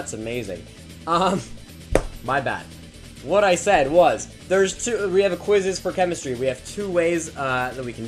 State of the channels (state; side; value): identical; both; correlation 1.00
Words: amazing. My bad. What I said was, we have a quizzes for chemistry. We have two ways that we